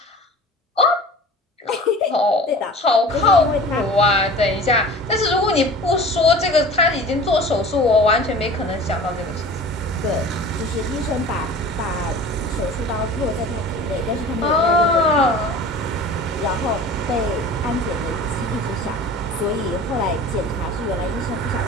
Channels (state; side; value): normal; both; correlation 0.40